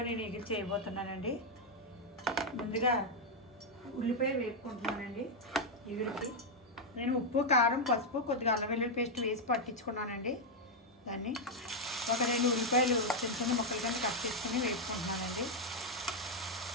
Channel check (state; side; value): normal; both; correlation 0.00